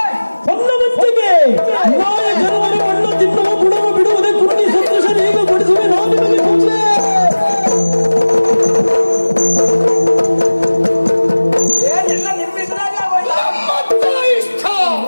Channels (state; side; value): inverted; both; correlation -1.00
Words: ಹೊನ್ನವತ್ತಿಗೆ ನಾಯ ಜನವರ ಮಣ್ಣು ತಿನ್ನುವ ಗುಣವ ಬಿಡುವುದೇ ಕುಟ್ಟಿ ಸಂತೋಷ ಈಗ ಬಡಿಸುವೆ ನಾವು ನಿಮಗೆ ಮುಂದೆ. ಏನೆಲ್ಲ ನಿಮ್ಮಿದ್ರಾಗ ನಮ್ಮತ್ತ ಇಷ್ಟ,